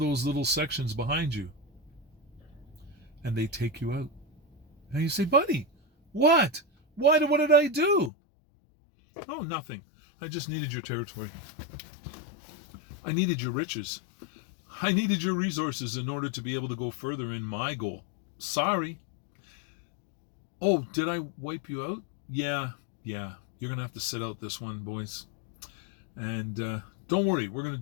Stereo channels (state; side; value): drops out; right; at 8.1 s